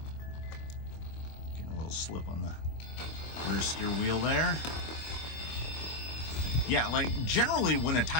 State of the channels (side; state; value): right; late; 25 ms